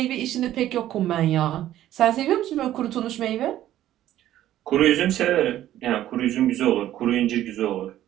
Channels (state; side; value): quieter; left; 12.9 dB